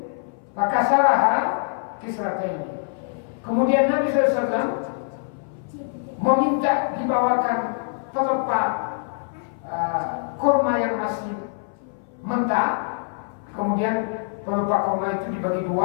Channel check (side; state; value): right; silent; 59 dB below the other